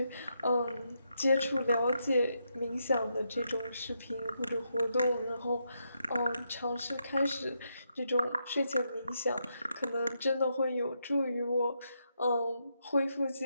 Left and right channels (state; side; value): inverted; both; correlation -0.81